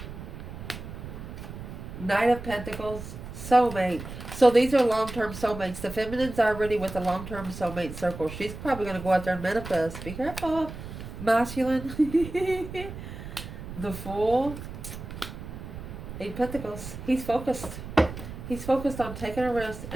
Knight of Pentacles, soulmate. So these are long-term soulmates. The feminine's already with the long-term soulmate circle. She's probably going to go out there and manifest. Be careful, masculine. The Fool. 8 Pentacles. He's focused. He's focused on taking a risk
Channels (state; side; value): noise; right; rumble, 10 dB below the sound